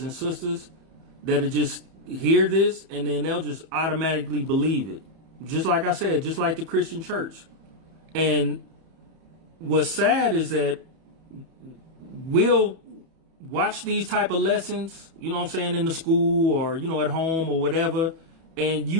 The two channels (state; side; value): late; left; 31 ms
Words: and sisters that'll just hear this and then they'll just automatically believe it. Just like I said, just like the Christian church. And what's sad is that we'll watch these type of lessons, you know what I'm saying, in the school or, at home or whatever. And